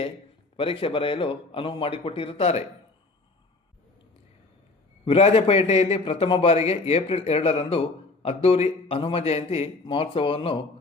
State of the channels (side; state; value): right; quieter; 3.4 dB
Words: ಪರೀಕ್ಷೆ ಬರೆಯಲು ಅನುವು ಮಾಡಿಕೊಟ್ಟಿರುತ್ತಾರೆ. ವಿರಾಜಪೇಟೆಯಲ್ಲಿ ಪ್ರಥಮ ಬಾರಿಗೆ ಏಪ್ರಿಲ್ 2ರಂದು ಅದ್ದೂರಿ ಹನುಮ ಜಯಂತಿ ಮಹೋತ್ಸವವನ್ನು